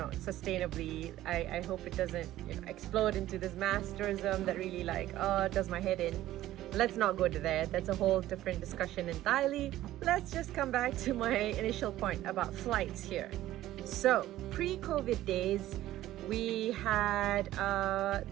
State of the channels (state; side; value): quieter; left; 14.5 dB